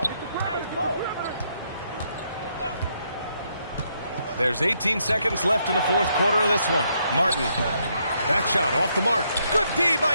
There's 18 seconds left in the fourth quarter of this one. Martin, that shot off the mark. Good D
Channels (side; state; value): both; inverted; correlation -0.75